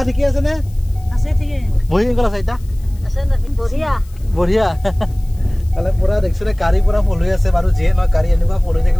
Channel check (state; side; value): noise; left; hiss, 28 dB below the sound